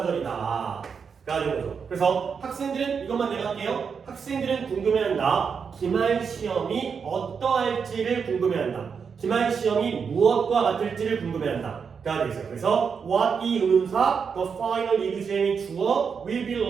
가 되는 거죠. 그래서 학생들은 이것만 내가 할게요. 학생들은 궁금해한다. 기말 시험이 어떠할지를 궁금해한다. 기말 시험이 무엇과 같을지를 궁금해한다 가 되겠어요. 그래서 what 이 의문사, the final exam이 주어, will be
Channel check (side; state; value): left; quieter; 6.2 dB